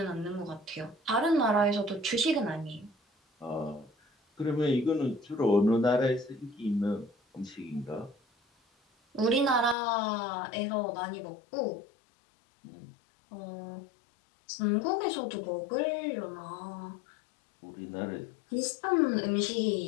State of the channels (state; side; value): drops out; right; at 9.8 s